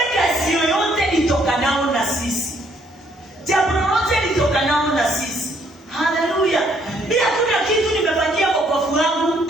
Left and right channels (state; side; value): normal; both; correlation 0.67